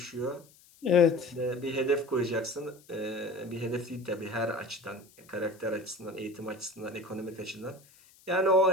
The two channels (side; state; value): left; noise; hiss, 27 dB below the sound